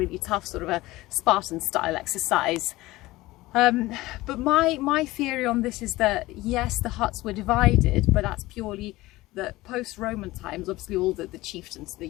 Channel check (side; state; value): right; quieter; 18.7 dB